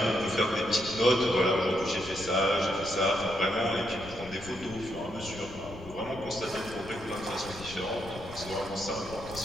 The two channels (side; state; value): left; noise; rumble, 15 dB below the sound